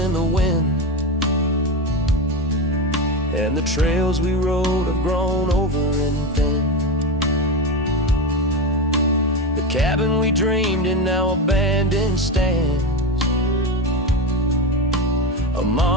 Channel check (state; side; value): normal; both; correlation 0.18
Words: the wind, and the trails we rode have grown over and thin. The cabin we dreamed in now abandoned stands, a